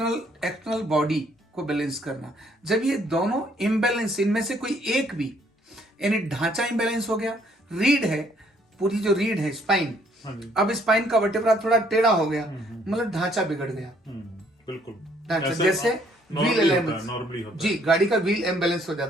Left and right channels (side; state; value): both; normal; correlation 0.65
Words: बॉडी को बैलेंस करना, जब ये दोनों इम्बैलेंस, इनमें से कोई एक भी, यानी ढांचा इम्बैलेंस हो गया, रीढ़ है, पूरी जो रीढ़ है स्पाइन, अब स्पाइन का वर्टेब्रा थोड़ा टेढ़ा हो गया, मतलब ढांचा बिगड़ गया। बिल्कुल ढांचा जैसे व्हील अलाइनमेंट, जी, गाड़ी का व्हील इम्बैलेंस हो